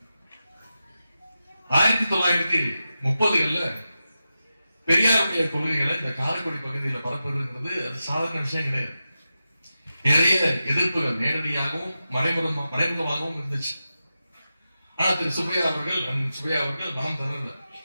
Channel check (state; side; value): inverted; both; correlation -0.91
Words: 1930களில் பெரியாருடைய கொள்கைகளை இந்த காரைக்குடி பகுதியில் பரப்புவதுங்கிறது அது சாதாரண விஷயம் கிடையாது. நிறைய எதிர்ப்புகள் நேரடியாகவும் மறைமுகமாகவும் இருந்துச்சு. ஆனா திரு சுப்பையா அவர்கள் நாம் தரல.